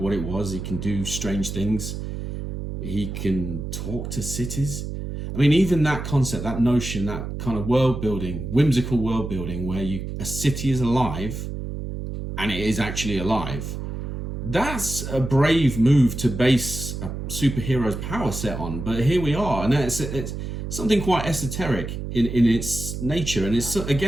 it was. He can do strange things. He can talk to cities. I mean, even that concept, that notion, that kind of world building, whimsical world building, where a city is alive, and it is actually alive. That's a brave move to base a superhero's power set on. But here we are, and it's something quite esoteric in its nature. And it's,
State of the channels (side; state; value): right; noise; hum, 6 dB below the sound